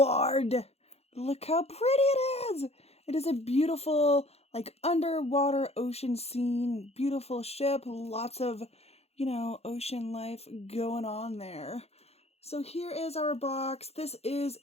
Look how pretty it is. It is a beautiful, underwater ocean scene. Beautiful ship, lots of, ocean life going on there. So here is our box. This is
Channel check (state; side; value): late; right; 0.30 ms